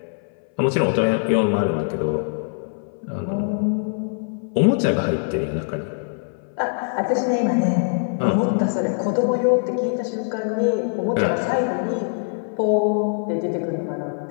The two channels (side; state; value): right; silent; 60 dB below the other